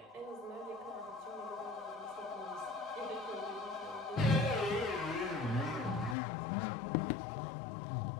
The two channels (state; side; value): drops out; right; at 6.2 s